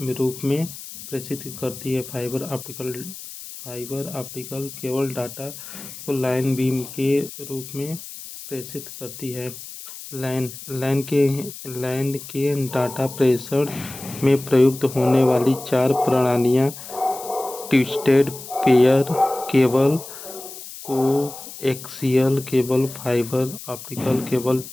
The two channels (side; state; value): left; noise; hiss, 13 dB below the sound